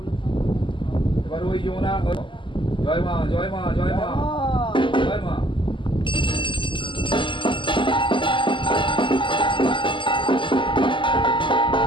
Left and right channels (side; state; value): right; late; 0.24 ms